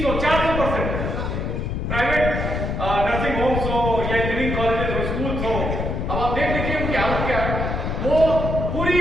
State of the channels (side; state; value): left; noise; rumble, 2 dB below the sound